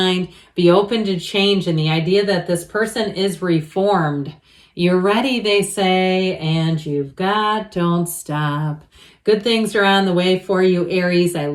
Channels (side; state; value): both; identical; correlation 1.00